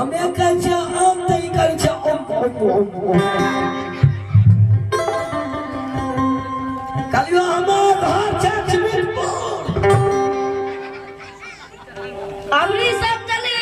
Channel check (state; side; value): identical; both; correlation 1.00